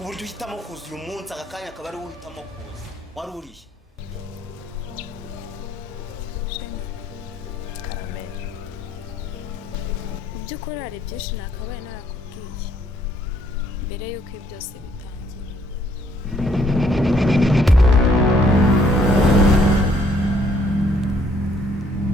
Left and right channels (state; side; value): normal; both; correlation 0.66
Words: buryo uhitamo kuza uyu munsi aka kanya akaba ari wowe uhitamo kuza wari urihe Karameli mu by'ukuri hari byinshi nakabaye narakubwiye mbere y'uko ibi byose bitangira